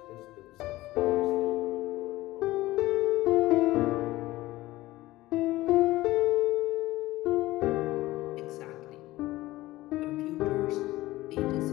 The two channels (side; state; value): right; quieter; 17.6 dB